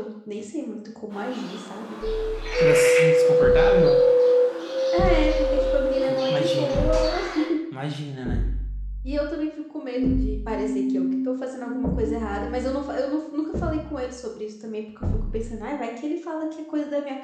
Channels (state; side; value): identical; both; correlation 1.00